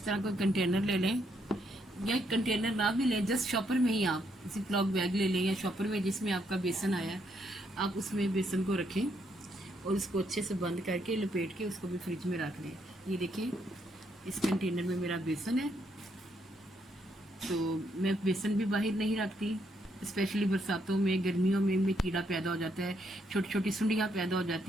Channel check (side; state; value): both; normal; correlation 0.75